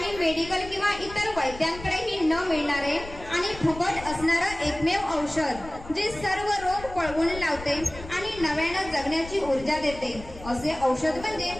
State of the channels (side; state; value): left; noise; rumble, 14 dB below the sound